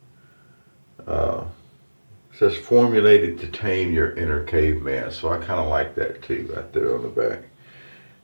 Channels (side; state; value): both; inverted; correlation -1.00